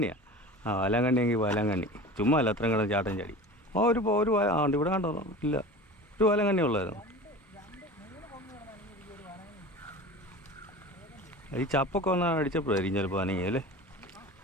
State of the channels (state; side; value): normal; both; correlation 0.35